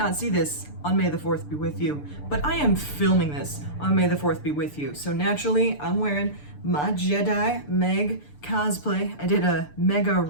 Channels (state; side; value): late; right; 6.8 ms